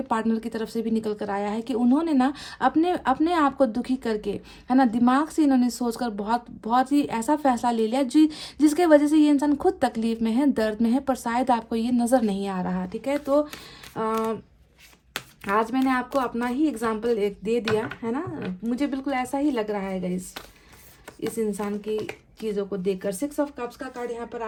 पार्टनर की तरफ से भी निकल कर आया है कि उन्होंने ना अपने आप को दुखी करके, है ना, दिमाग से इन्होंने सोचकर बहुत ही ऐसा फैसला ले लिया जिसके वजह से ये इंसान खुद तकलीफ में है, दर्द में है, पर शायद आपको ये नज़र नहीं आ रहा, ठीक है। तो आज मैंने आपको अपना ही एग्जाम्पल एक दे दिया, है ना, मुझे बिल्कुल ऐसा ही लग रहा है गाइस इस इंसान की चीज़ों को देखकर। 6 ऑफ कप्स का कार्ड यहाँ पर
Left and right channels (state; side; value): identical; both; correlation 1.00